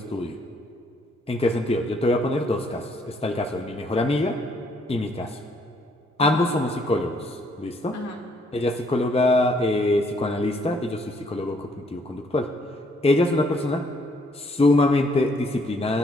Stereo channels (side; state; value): both; normal; correlation 0.67